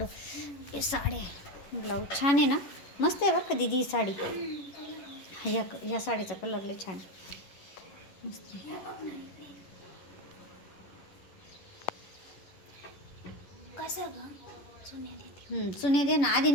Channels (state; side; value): late; right; 11 ms